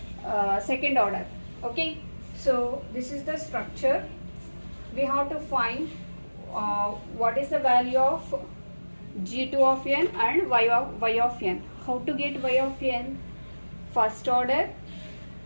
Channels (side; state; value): both; inverted; correlation -1.00